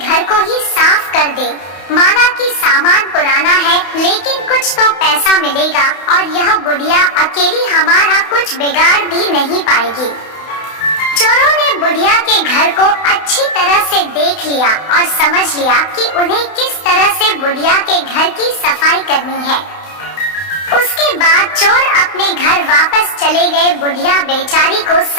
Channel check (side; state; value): right; late; 31 ms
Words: को ही साफ कर दें। माना कि सामान पुराना है, लेकिन कुछ तो पैसा मिलेगा और यह बुढ़िया अकेली हमारा कुछ बिगाड़ भी नहीं पाएगी। चोरों ने बुढ़िया के घर को अच्छी तरह से देख लिया और समझ लिया कि उन्हें किस तरह से बुढ़िया के घर की सफाई करनी है। उसके बाद चोर अपने घर वापस चले गए। बुढ़िया बेचारी को